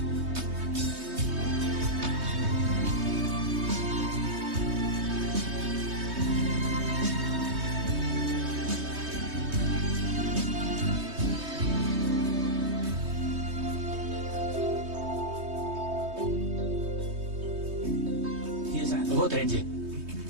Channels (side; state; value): left; late; 3.2 ms